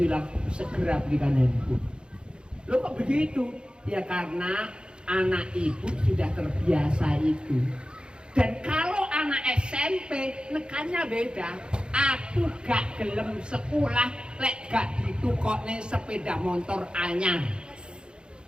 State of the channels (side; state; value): left; late; 0.052 ms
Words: segera belikan handphone. Loh kok begitu? Ya karena anak ibu sudah terbiasa itu. Dan kalau anak SMP nekannya beda. Aku gak gelem sekolah lek gak ditukokne sepeda motor anyar.